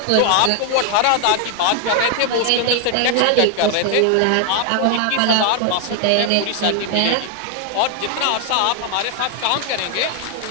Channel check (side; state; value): both; different; correlation 0.00